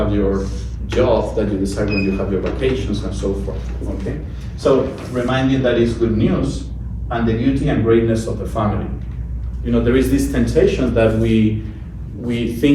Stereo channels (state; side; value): identical; both; correlation 1.00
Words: your job that you decide when you have your vacations and so forth, okay? So reminding that it's good news and the beauty and greatness of the family. You know, there is this temptation that we